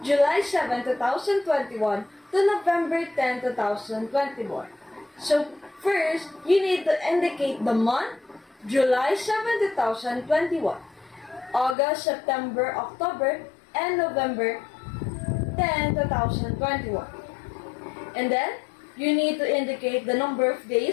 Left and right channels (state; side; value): drops out; right; at 11.8 s